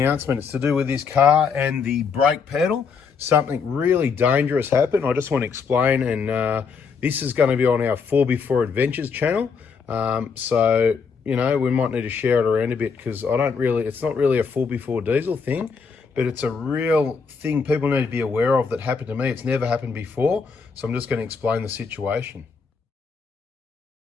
It's to do with this car and the brake pedal. Something really dangerous happened. I just want to explain, and this is going to be on our 4x4 Adventures channel. So, you know, we might need to share it around a bit because it's not really a 4x4 diesel thing, but it's a real thing people need to be aware of that happened to me. It's never happened before. So I'm just going to explain the situation.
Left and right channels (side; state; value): right; quieter; 5.6 dB